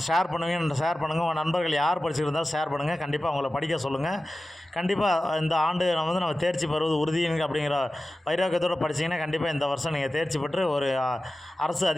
ஷேர் பண்ணுங்கள். உங்கள் நண்பர்கள் யார் படிச்சுருந்தாலும் ஷேர் பண்ணுங்கள். கண்டிப்பாக அவங்கள படிக்க சொல்லுங்கள். கண்டிப்பாக இந்த ஆண்டு நம்ம தேர்ச்சி பெறுவது உறுதிங்க அப்படிங்கிற வைராக்கியத்தோடு படிச்சிங்கன்னா கண்டிப்பாக இந்த வருஷம் நீங்கள் தேர்ச்சி பெற்று ஒரு அரசு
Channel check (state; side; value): normal; both; correlation 0.94